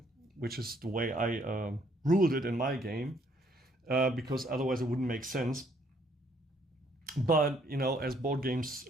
which is the way I ruled it in my game, because otherwise it wouldn't make sense. But, you know, as board games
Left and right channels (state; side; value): normal; both; correlation 0.66